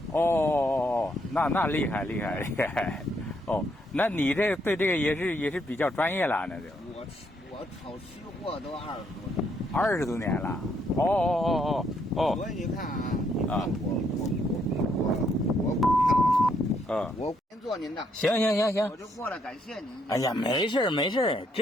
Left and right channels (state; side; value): normal; both; correlation 0.73